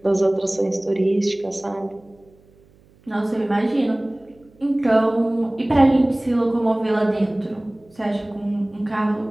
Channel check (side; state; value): right; noise; hum, 30 dB below the sound